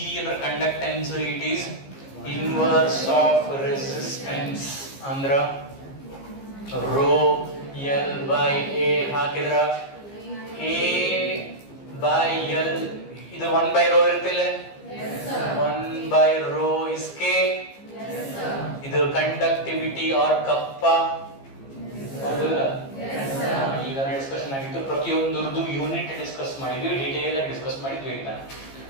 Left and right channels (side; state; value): right; late; 15 ms